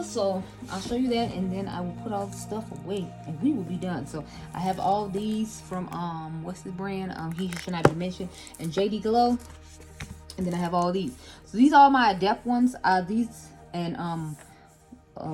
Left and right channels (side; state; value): both; identical; correlation 1.00